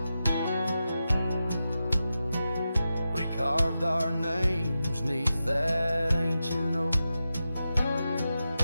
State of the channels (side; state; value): both; inverted; correlation -0.91